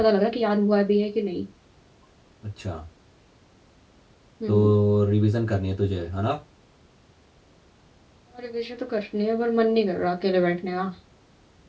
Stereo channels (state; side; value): identical; both; correlation 1.00